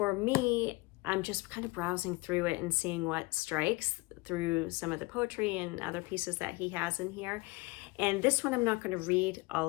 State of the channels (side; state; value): right; quieter; 24.5 dB